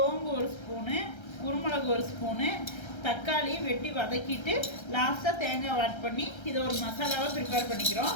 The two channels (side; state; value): right; late; 1.3 ms